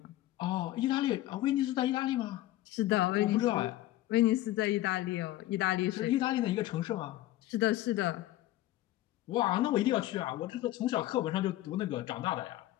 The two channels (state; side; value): quieter; right; 15.4 dB